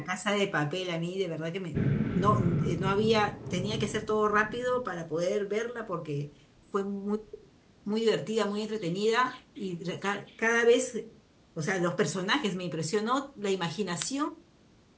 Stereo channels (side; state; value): both; identical; correlation 1.00